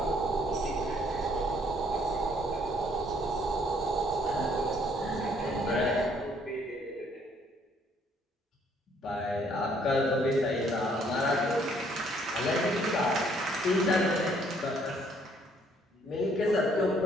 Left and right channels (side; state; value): both; normal; correlation 0.64